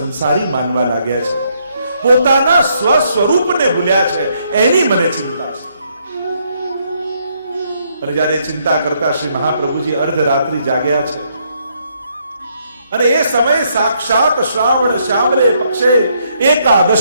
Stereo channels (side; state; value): both; inverted; correlation -0.72